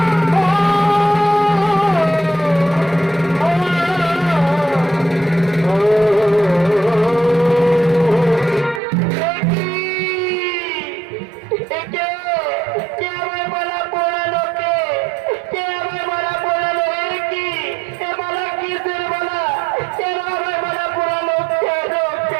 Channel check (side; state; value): left; drops out; at 8.8 s